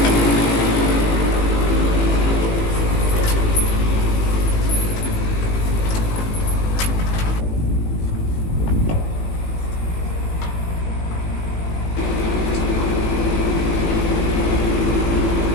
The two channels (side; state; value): right; late; 18 ms